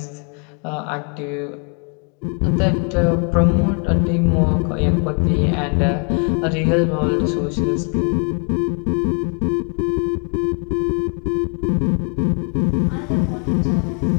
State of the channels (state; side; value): quieter; right; 40.0 dB